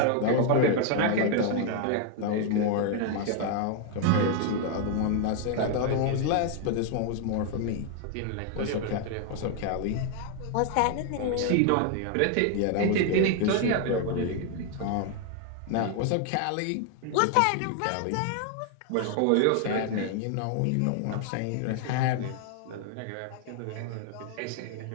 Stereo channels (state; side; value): different; both; correlation 0.00